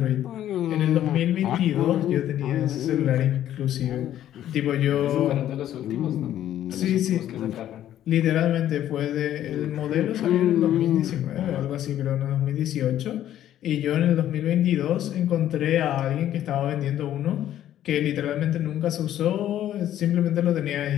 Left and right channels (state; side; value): quieter; right; 11.8 dB